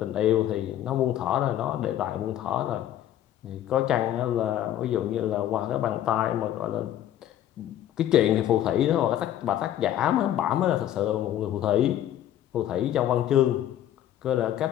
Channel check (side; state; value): right; quieter; 11.7 dB